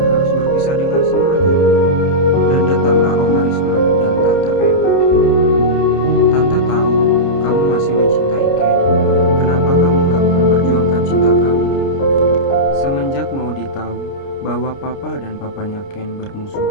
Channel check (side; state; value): right; late; 29 ms